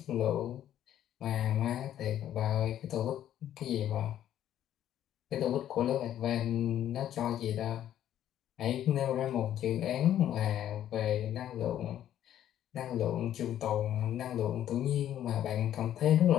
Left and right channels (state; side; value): quieter; right; 11.3 dB